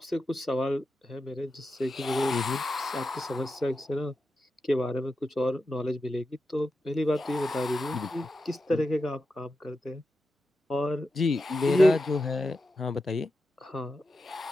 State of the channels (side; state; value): both; normal; correlation 0.90